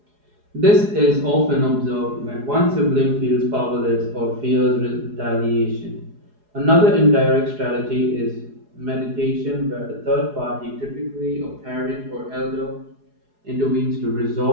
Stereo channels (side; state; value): left; late; 4.8 ms